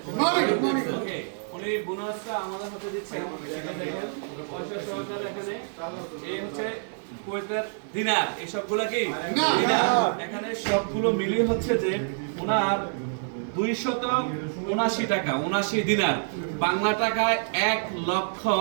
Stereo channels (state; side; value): silent; left; digital silence